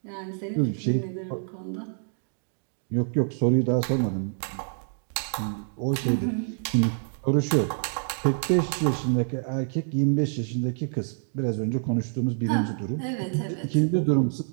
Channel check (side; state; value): left; silent; digital silence